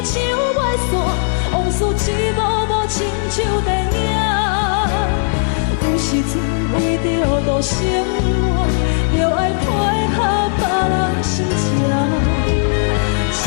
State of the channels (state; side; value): silent; right; digital silence